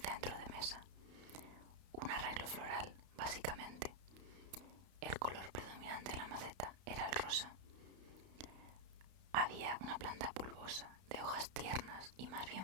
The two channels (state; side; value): late; left; 32 ms